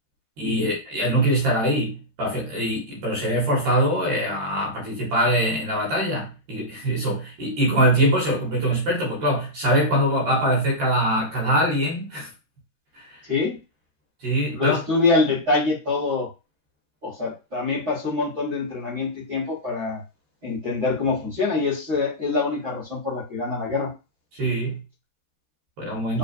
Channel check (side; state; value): left; late; 13 ms